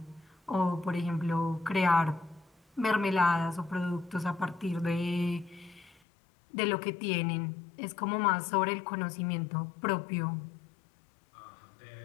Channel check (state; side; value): drops out; right; at 6.0 s